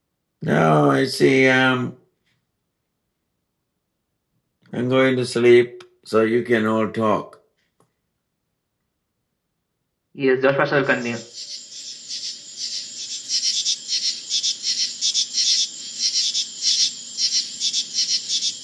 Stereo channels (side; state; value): both; identical; correlation 1.00